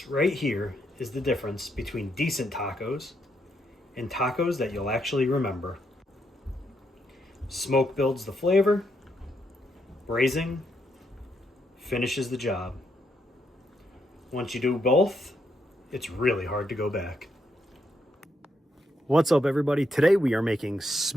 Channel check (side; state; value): both; normal; correlation 0.78